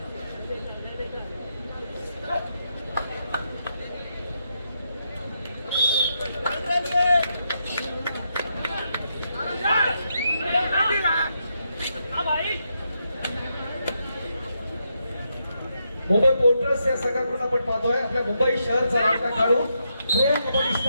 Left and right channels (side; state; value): both; inverted; correlation -0.81